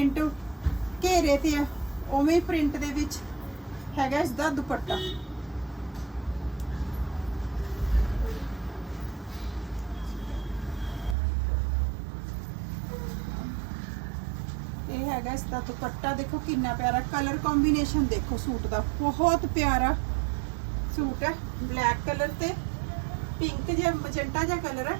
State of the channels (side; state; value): left; drops out; at 11.2 s